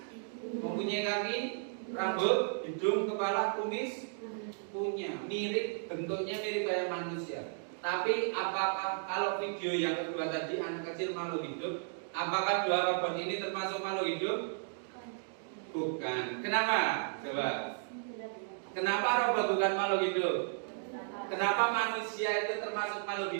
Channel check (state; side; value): silent; left; digital silence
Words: Mempunyai kaki? Rambut, hidung, kepala, kumis? Punya. Mirip, bentuknya mirip kayak manusia. Tapi apakah kalau video yang kedua tadi anak kecil makhluk hidup, apakah 2 robot ini termasuk makhluk hidup? Bukan. Kenapa? Coba. Kenapa robot bukan makhluk hidup? Kenapa manusia itu termasuk makhluk